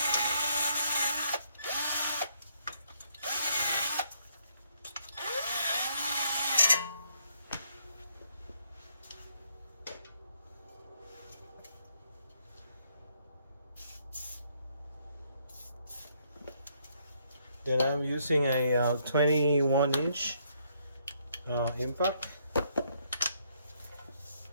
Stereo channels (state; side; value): inverted; both; correlation -0.72